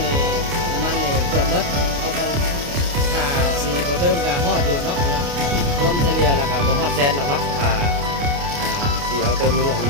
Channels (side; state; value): left; late; 29 ms